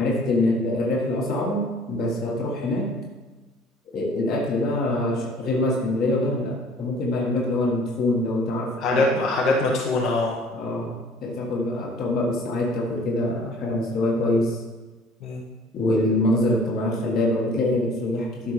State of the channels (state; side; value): normal; both; correlation 0.52